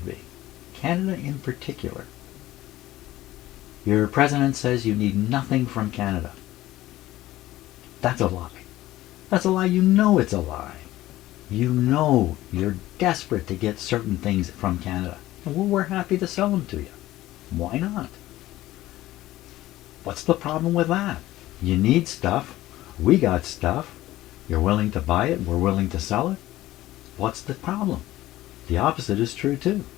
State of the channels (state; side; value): quieter; right; 15.8 dB